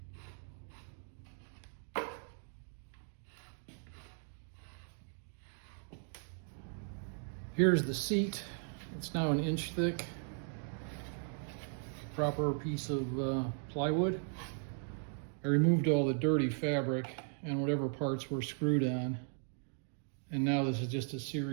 Here's the seat. It's now 1 inch thick. Proper piece of plywood. I removed all the dirty fabric and whatever parts were screwed on. And now this is just a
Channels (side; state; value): left; silent; 53 dB below the other